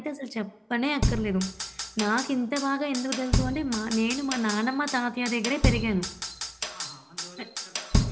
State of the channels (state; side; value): identical; both; correlation 1.00